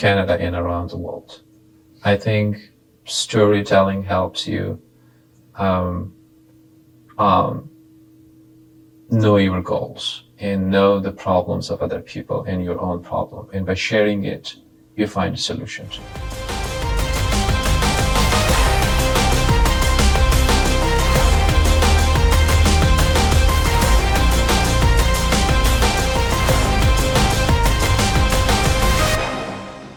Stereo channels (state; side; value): identical; both; correlation 1.00